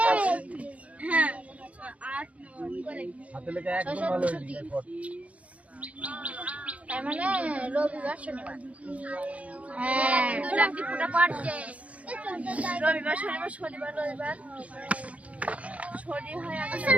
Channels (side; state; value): left; late; 0.066 ms